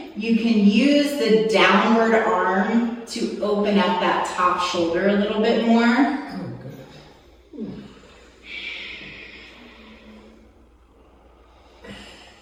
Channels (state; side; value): identical; both; correlation 1.00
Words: you can use the downward arm to open up that top shoulder a little bit more.